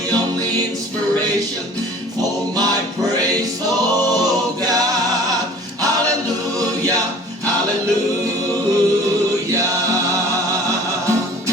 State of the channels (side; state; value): both; normal; correlation 0.47